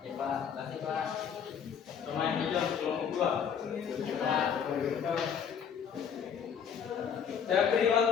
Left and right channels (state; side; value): quieter; right; 7.6 dB